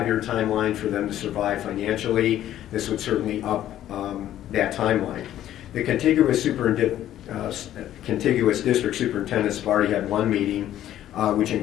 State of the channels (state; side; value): quieter; right; 12.3 dB